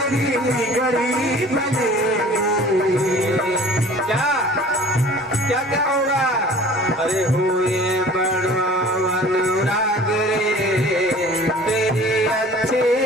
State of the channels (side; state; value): both; normal; correlation 0.47